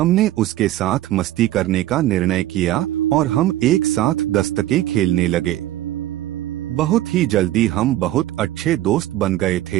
उसके साथ मस्ती करने का निर्णय किया और हम एक साथ दस्तकें खेलने लगे। बहुत ही जल्दी हम बहुत अच्छे दोस्त बन गए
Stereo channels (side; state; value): left; quieter; 14.5 dB